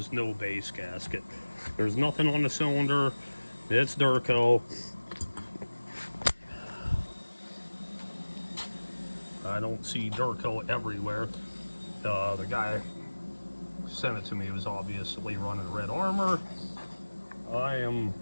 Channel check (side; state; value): both; inverted; correlation -1.00